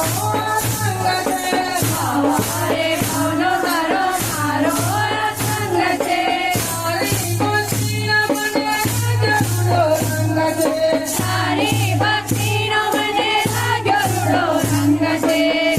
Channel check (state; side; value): noise; left; rumble, 23 dB below the sound